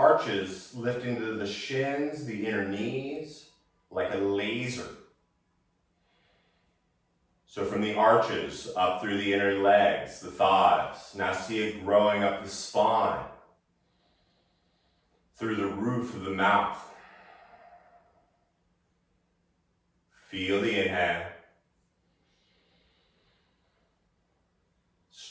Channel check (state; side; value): identical; both; correlation 1.00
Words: lifting to the shins, the inner knees, like a laser. So from the arches, up through the inner legs, the thighs. Now see it growing up the spine, through the roof of the mouth. Feel the inhale.